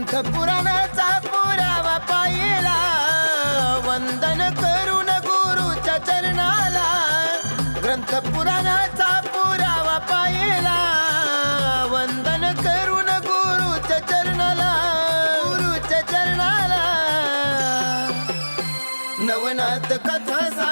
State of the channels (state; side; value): inverted; both; correlation -1.00